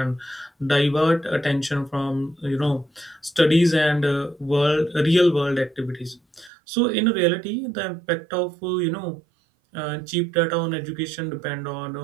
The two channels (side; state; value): left; drops out; at 6.5 s